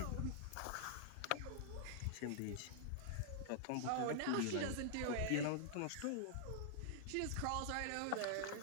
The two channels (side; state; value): both; different; correlation -0.01